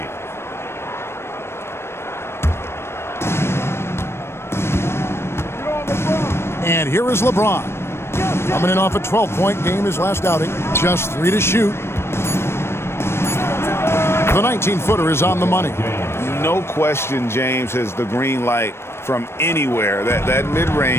And here is LeBron. Coming in off a 12-point game his last outing. Just 3 to shoot. The 19-footer is on the money. No question James has the green light from anywhere. That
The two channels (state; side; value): late; right; 0.12 ms